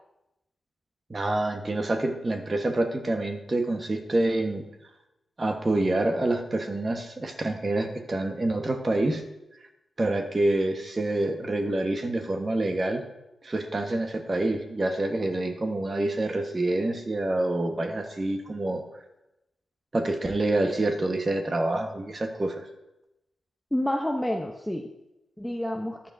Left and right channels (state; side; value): normal; both; correlation 0.95